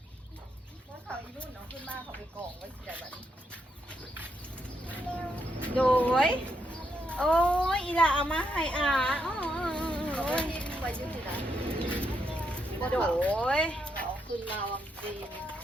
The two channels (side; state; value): both; normal; correlation 0.79